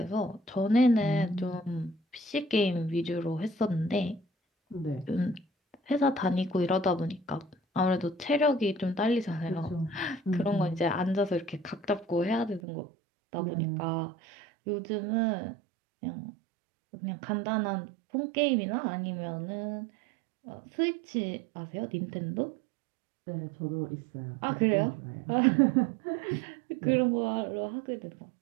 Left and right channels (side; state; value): left; drops out; at 12.6 s